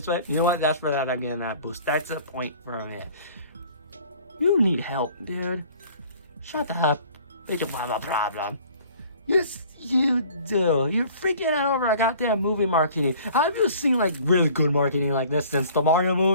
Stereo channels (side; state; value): both; inverted; correlation -0.51